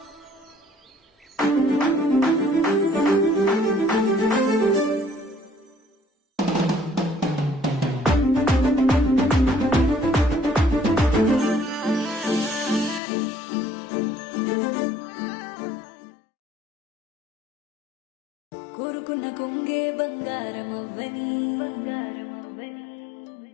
కోరుకున్న కొంగే బంగారమవ్వని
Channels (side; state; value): right; drops out; at 13.0 s